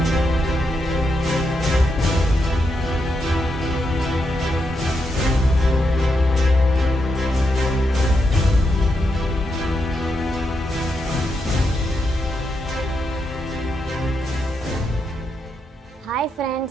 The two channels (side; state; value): both; normal; correlation 0.82